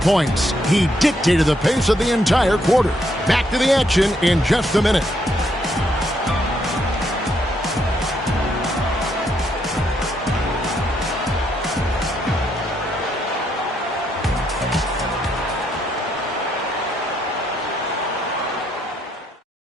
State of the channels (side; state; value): both; normal; correlation 0.75